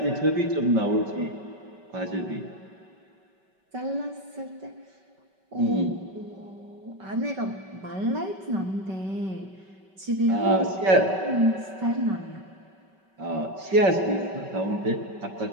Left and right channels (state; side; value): late; left; 5.2 ms